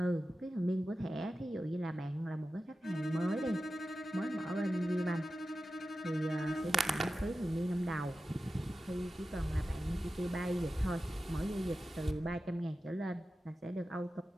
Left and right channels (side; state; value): both; normal; correlation 0.92